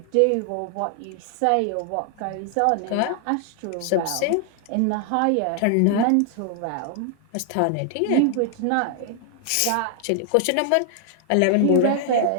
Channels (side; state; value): both; different; correlation 0.00